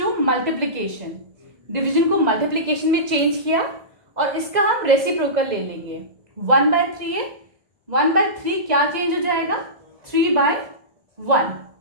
multiplication. Division को multiplication में change किया और इसका हम रेसिप्रोकल ले लेंगे. 1 by 3 है, 1 by 3 क्या चेंज हो जाएगा? 3 by 1.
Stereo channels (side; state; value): left; late; 2.0 ms